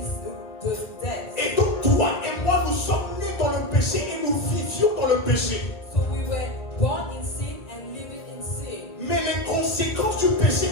the death. Et donc toi et moi, nous sommes nés dans le péché et nous vivions dans le péché. So we were born in sin and living in sin. Mais les conséquences du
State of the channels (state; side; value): late; right; 1.4 ms